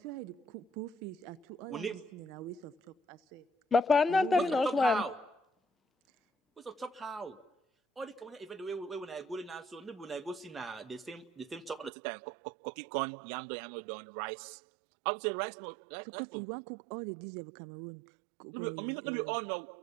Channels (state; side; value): drops out; left; at 11.9 s